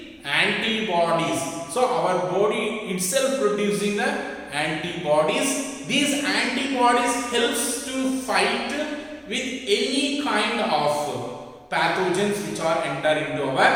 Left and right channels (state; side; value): identical; both; correlation 1.00